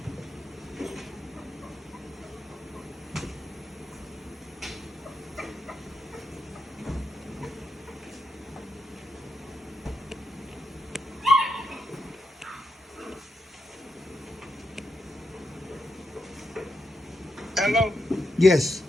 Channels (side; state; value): both; normal; correlation 0.85